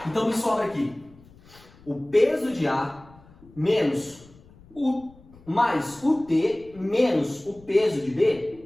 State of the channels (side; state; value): left; noise; rumble, 25 dB below the sound